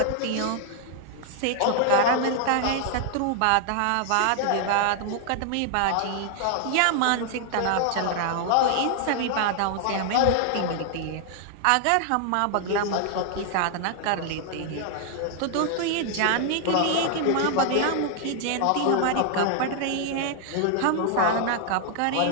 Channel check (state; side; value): different; both; correlation 0.00